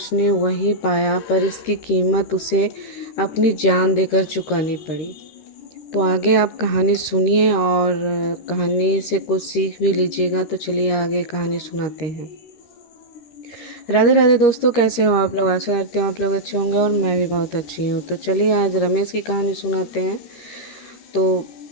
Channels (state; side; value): late; right; 13 ms